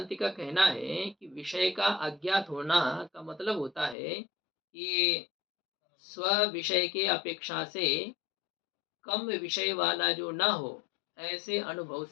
का कहना है कि विषय का अज्ञात होना का मतलब होता है कि स्व विषय के अपेक्षा से कम विषय वाला जो ना हो, ऐसे अनुभव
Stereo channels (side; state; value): right; drops out; at 4.0 s